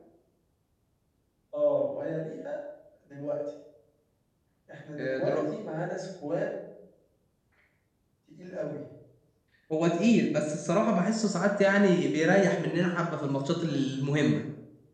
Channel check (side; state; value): both; identical; correlation 1.00